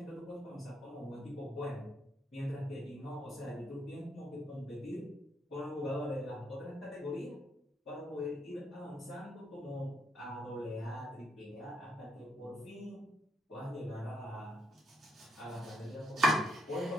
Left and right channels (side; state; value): both; normal; correlation 0.75